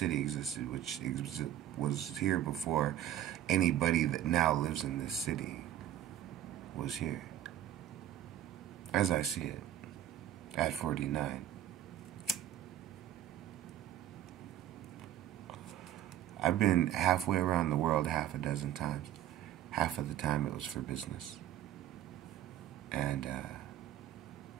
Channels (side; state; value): left; quieter; 11.9 dB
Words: existed, which was here before anybody that now lives in this city was here. As I see it, at 49. I've been halfway around the world half a dozen times. Half of the time it was for business. And